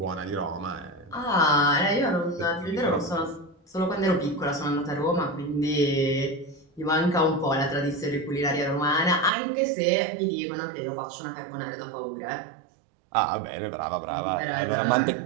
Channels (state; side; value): drops out; left; at 9.3 s